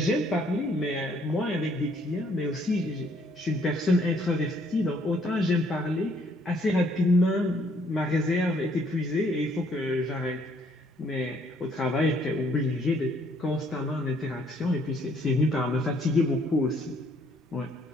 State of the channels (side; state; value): both; normal; correlation 0.66